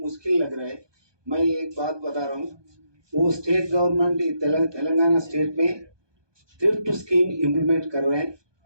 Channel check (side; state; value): left; late; 1.2 ms